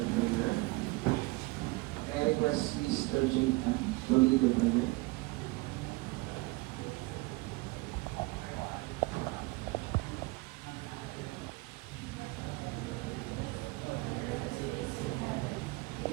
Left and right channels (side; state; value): left; quieter; 23.3 dB